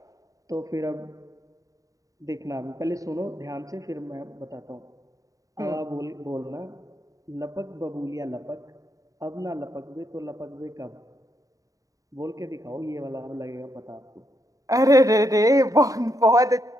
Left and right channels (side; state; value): left; late; 0.16 ms